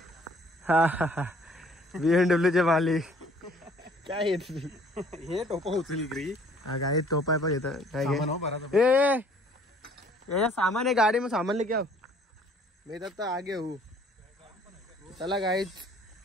हा BMW मालिक काय येत हे टोपा उचली ग्री. हा गाडी टोपा आहे पण येतं काय सामान आहे गाडी में, सामान लेके आओ. मी तर आगे हूँ. चला गाईच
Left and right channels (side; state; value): both; normal; correlation 0.57